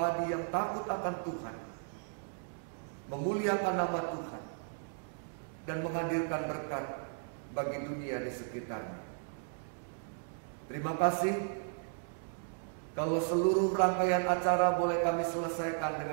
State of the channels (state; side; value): silent; left; digital silence